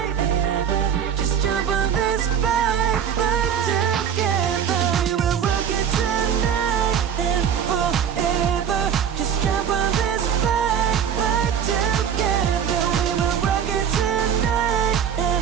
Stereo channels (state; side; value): quieter; left; 8.2 dB